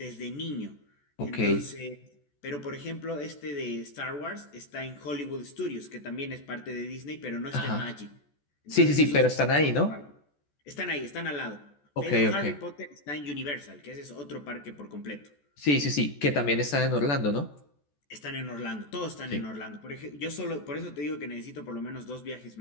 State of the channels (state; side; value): late; right; 14 ms